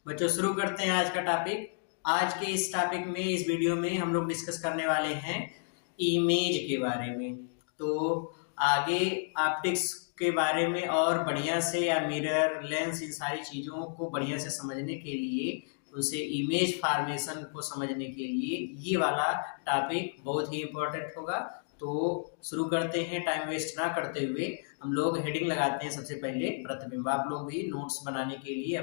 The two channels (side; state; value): right; silent; digital silence